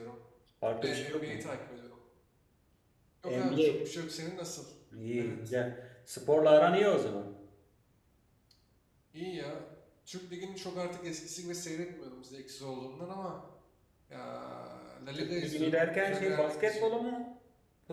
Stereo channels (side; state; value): both; identical; correlation 1.00